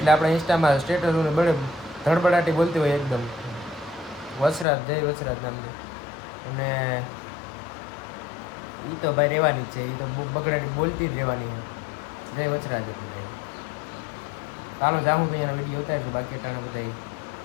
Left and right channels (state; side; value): drops out; right; at 4.7 s